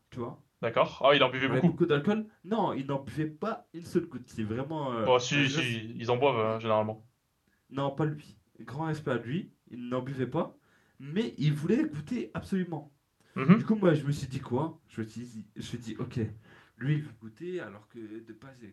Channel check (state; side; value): identical; both; correlation 1.00